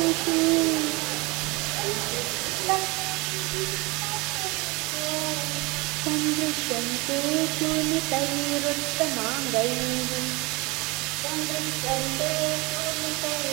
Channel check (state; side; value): quieter; left; 25.3 dB